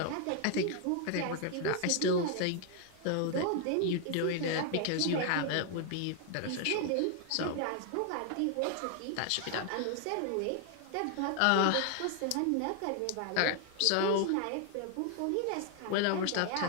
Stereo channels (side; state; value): both; different; correlation 0.00